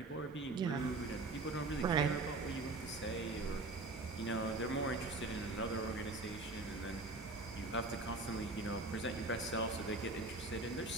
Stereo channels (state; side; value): quieter; left; 3.2 dB